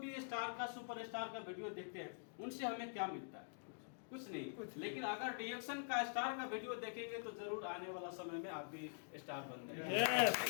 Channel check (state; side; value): silent; right; digital silence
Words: स्टार का, सुपरस्टार का वीडियो देखते हैं, उनसे हमें क्या मिलता है? कुछ नहीं। लेकिन अगर DXN का स्टार का वीडियो देखेंगे तो जरूर आने वाला समय में आप भी स्टार बन